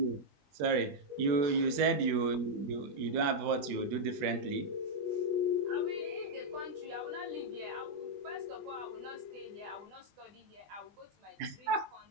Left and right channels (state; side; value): late; left; 21 ms